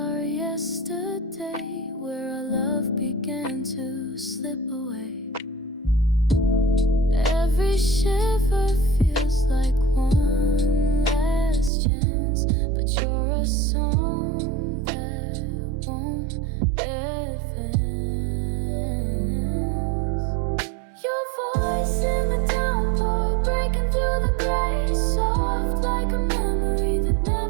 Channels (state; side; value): drops out; left; at 11.7 s